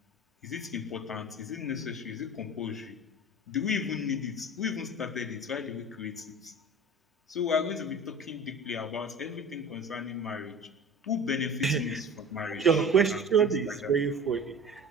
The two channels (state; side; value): normal; both; correlation 0.38